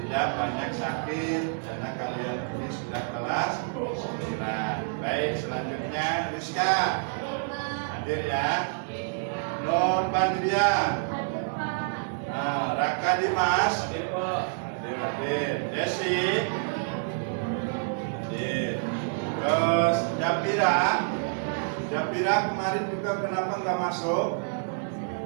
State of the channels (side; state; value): left; silent; 59 dB below the other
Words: tidak banyak sakit karena kalian ini sudah kelas 9. Baik, selanjutnya Rizka hadir ya. Nur Badria, Raka Dimas, hadir. Desi, hadir. Terus Japira kemarin juga kenapa nggak masuk?